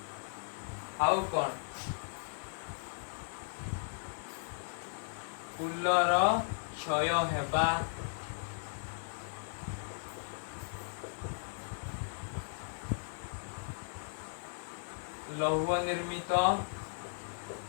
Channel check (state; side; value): silent; right; 53 dB below the other